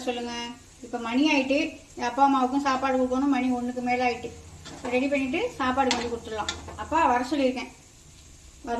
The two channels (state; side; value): identical; both; correlation 1.00